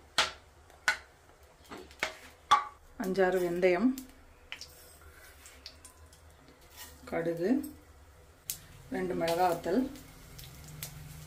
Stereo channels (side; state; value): both; identical; correlation 1.00